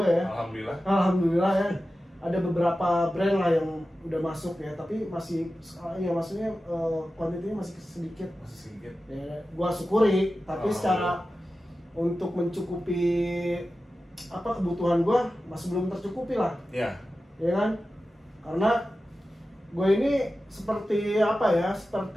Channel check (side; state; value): both; normal; correlation 0.94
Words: ya. Alhamdulillah. Alhamdulillah ya. Ada beberapa brand lah yang udah masuk ya, tapi masih ya maksudnya kuantitinya masih sedikit. Masih sedikit. Ya, gue syukuri, tapi secara untuk mencukupi apa kebutuhan gue masih belum tercukupi lah. Ya. Ya kan? Karena gue ini seperti apa ya?